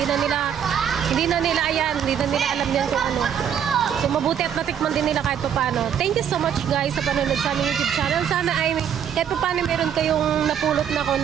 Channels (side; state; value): left; quieter; 8.7 dB